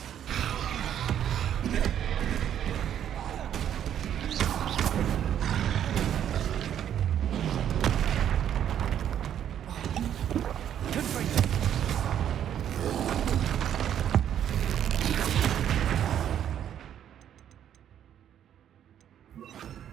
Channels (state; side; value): quieter; left; 10.0 dB